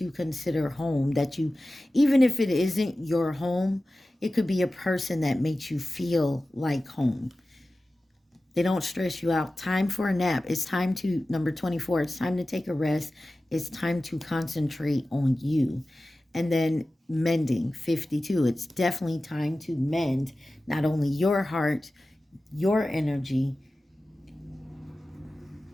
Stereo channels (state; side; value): normal; both; correlation 0.95